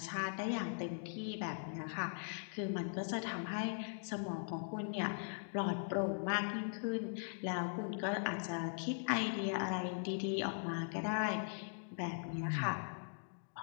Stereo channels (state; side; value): silent; right; digital silence